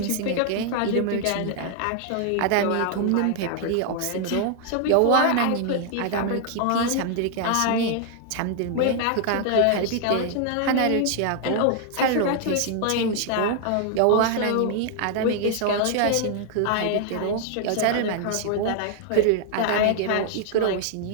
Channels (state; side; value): different; both; correlation 0.00